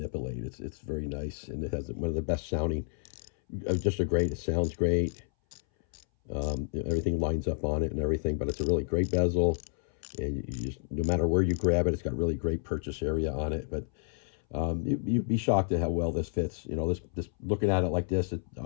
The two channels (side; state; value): right; silent; 58 dB below the other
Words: It's very nice, and it has one of the best sounding. It sounds great. Everything lines up on it and everything, but it's a really great bezel, and you just, no matter where you grab it, it's got really great purchase area on it. But you'd be shocked at how well this fits. This looking at it like this, it